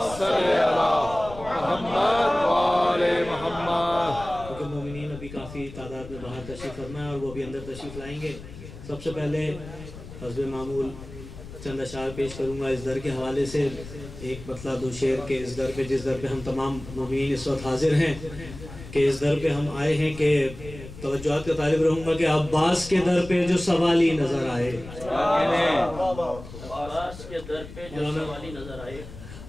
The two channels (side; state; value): left; noise; rumble, 14 dB below the sound